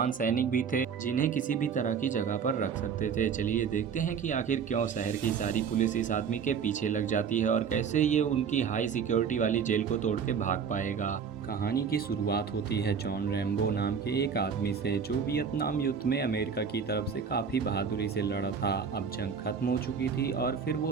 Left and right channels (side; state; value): left; quieter; 6.6 dB